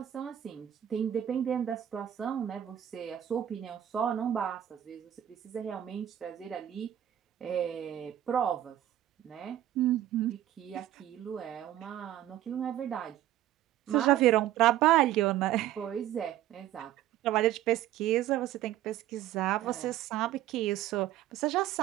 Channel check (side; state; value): left; quieter; 12.3 dB